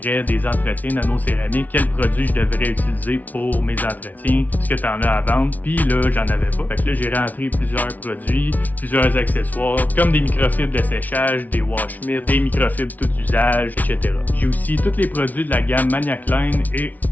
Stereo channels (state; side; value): late; right; 0.077 ms